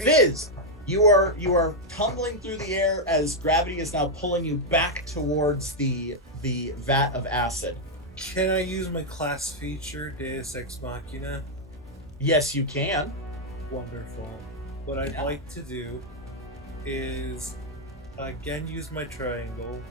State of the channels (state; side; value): normal; both; correlation -0.01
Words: you are tumbling through the air as gravity is now pulling you back towards the vat of acid. Can I use my class feature, Deus Ex Machina? Yes, you can. Wonderful. What I'd like to do is again use my triangle